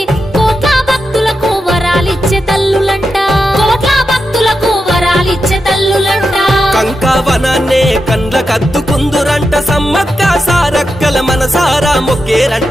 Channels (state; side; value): normal; both; correlation 0.88